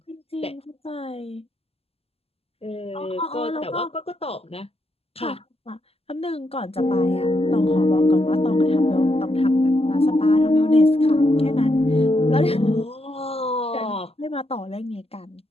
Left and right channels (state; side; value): late; right; 0.29 ms